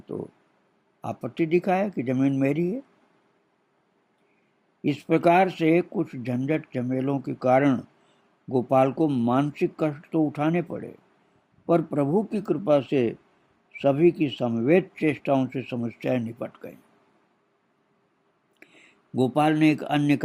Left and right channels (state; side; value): identical; both; correlation 1.00